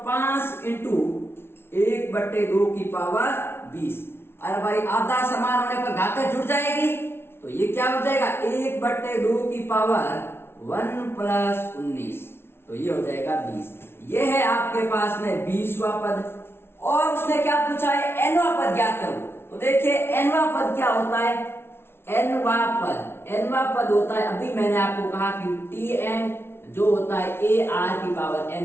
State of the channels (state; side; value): late; right; 0.12 ms